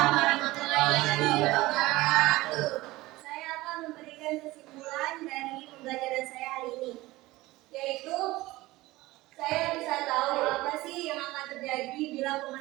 warahmatullahi wabarakatuh. Saya akan memberikan kesimpulan dari pembelajaran saya hari ini, yaitu saya bisa tahu apa sih yang akan terjadi bila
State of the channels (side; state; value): left; quieter; 19.1 dB